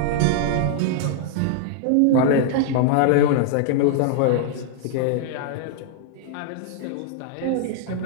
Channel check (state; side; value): different; both; correlation 0.00